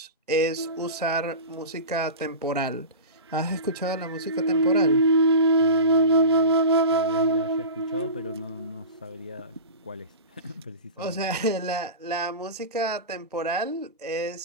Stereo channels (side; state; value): both; inverted; correlation -0.31